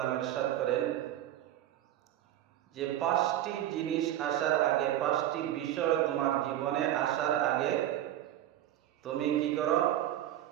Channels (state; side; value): quieter; left; 12.6 dB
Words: ইরশাদ করেন যে পাঁচটি জিনিস আসার আগে, পাঁচটি বিষয় তোমার জীবনে আসার আগে তুমি কি করো?